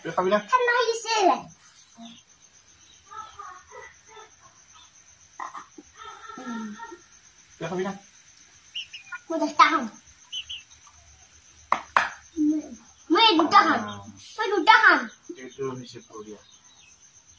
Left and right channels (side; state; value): both; identical; correlation 1.00